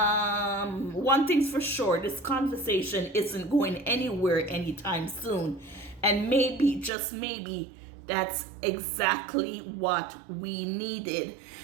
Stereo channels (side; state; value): left; drops out; at 6.9 s